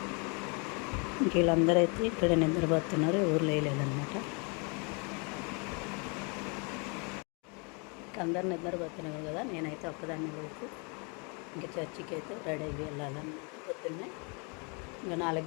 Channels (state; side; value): quieter; right; 33.8 dB